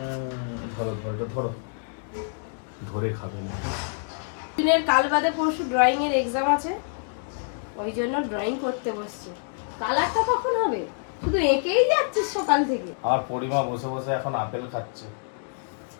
ধরো ধরো ধরো, ধরে খাবে না। দিনের কাল বাদে পরশু ড্রয়িং এর এক্সাম আছে, ওই জন্য ড্রয়িং করতে বসছে। কালারটা কখন হবে? শুধু এঁকেই যাচ্ছিস সকাল থেকে। আর পরিমা বসে বসে এখন আপেল খাচ্ছে।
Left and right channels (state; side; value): silent; right; digital silence